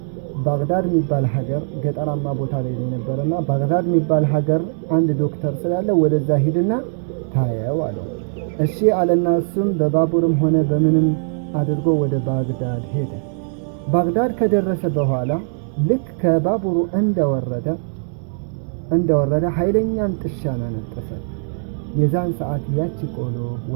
ባግዳድ የሚባል ሀገር ገጠራማ ቦታ ላይ ነበርና ባግዳድ የሚባል ሀገር አንድ ዶክተር ስላለ ወደዛ ሂድና ታየው አለው። እሺ አለና እሱም በባቡርም ሆነ በምንም አድርጎ ወደ ባግዳድ ሄደ። ባግዳድ ከደረሰ በኋላ ልክ ከባቡሩ እንደወረደ ኃይለኛን ጥሻን አነጠሰ። የዛን ሰዓት ያቺ ቆሎ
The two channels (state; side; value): silent; left; digital silence